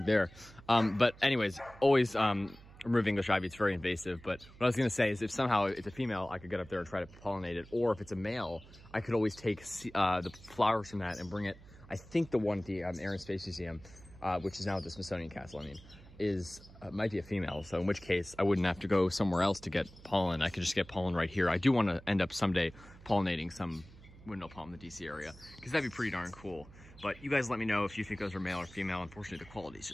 there. But anyways, always remove English ivy. It's very invasive. But what I was going to say is, if somehow it's a female, I could get up there and try to pollinate it. Or if it's a male, I could always take the flowers from that and bring it. I think the one at the Air and Space Museum, which is now at the Smithsonian Castle, I mean, might be a female. So in which case, I wouldn't have to go somewhere else to get pollen. I could just get pollen right here. I do want to end up someday pollinating some windmill palm in the DC area, because that'd be pretty darn cool. But you guys let me know if you think those are male or female. Unfortunately, the quality is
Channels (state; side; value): noise; right; hum, 20 dB below the sound